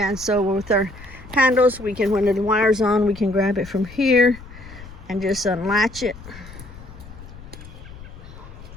so with our handles, we can, when the wire's on, we can grab it from here and just unlatch it.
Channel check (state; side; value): noise; left; rumble, 16 dB below the sound